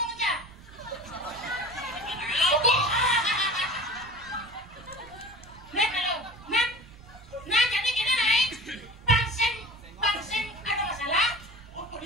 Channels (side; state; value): right; noise; rumble, 22 dB below the sound